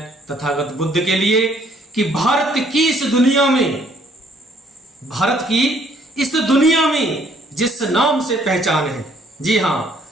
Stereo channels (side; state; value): both; normal; correlation 0.64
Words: तथागत बुद्ध के लिए कि भारत की इस दुनिया में जिस नाम से पहचान है, जी हाँ,